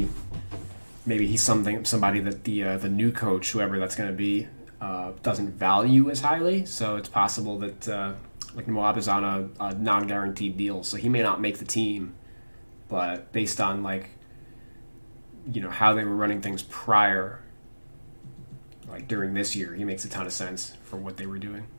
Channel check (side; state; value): both; inverted; correlation -1.00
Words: he's somebody that the new coach, whoever that's going to be, doesn't value as highly. So it's possible that like Moab is on a non-guaranteed deal, so he may not make the team. But based on like, you know, how they were running things prior, like during this year, he makes a ton of sense for what they were doing.